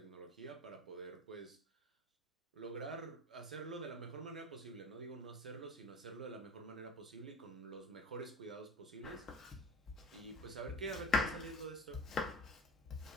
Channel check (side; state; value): both; normal; correlation 0.36